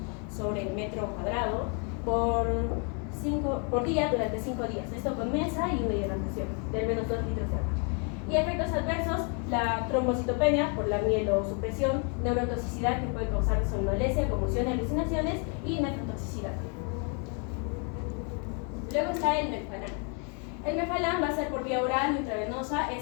sobre metro cuadrado por día durante 5 días. Esto con Mensa y una hidratación de al menos 2 litros de agua. Y efectos adversos, la trombocitopenia por la mielosupresión, neurotoxicidad que puede causar somnolencia, confusión, alucinaciones y nefrotoxicidad. Luego está el Melphalan. El Melphalan va a ser por vía oral o intravenosa.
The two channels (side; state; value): right; quieter; 38.5 dB